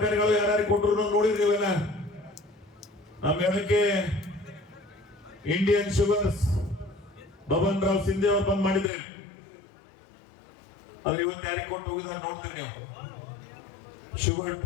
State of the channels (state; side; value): drops out; right; at 8.9 s